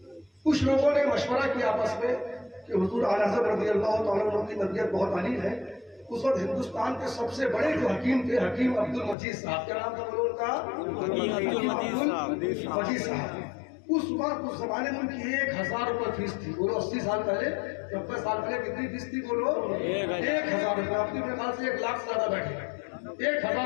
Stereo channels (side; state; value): right; drops out; at 9.2 s